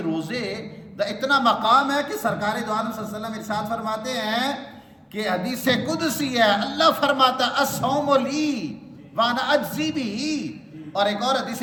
روزے دا اتنا مقام ہے کہ سرکار دو عالم صلی اللہ علیہ وسلم ارشاد فرماتے ہیں کہ حدیث قدسی ہے، اللہ فرماتا ہے الصوم لی وانا اجزی بھی، اور ایک اور حدیث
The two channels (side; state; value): both; identical; correlation 1.00